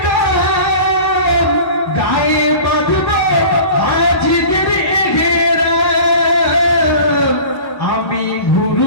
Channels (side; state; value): right; late; 1.1 ms